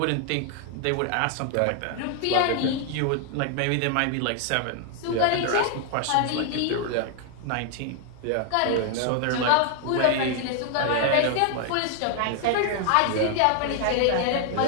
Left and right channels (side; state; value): both; different; correlation 0.00